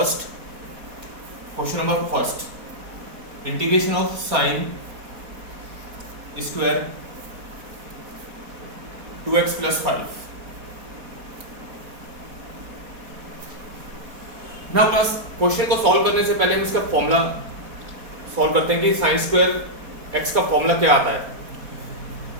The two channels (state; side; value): late; left; 4.2 ms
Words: Question number first. Integration of sine square 2x plus 5. Now class, question को सॉल्व करने से पहले हम इसका फॉर्मूला सॉल्व करते हैं कि साइन स्क्वायर x का फॉर्मूला क्या आता है.